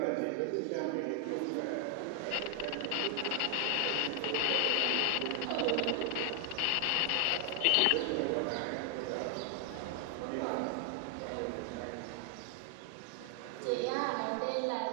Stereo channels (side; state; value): both; different; correlation 0.00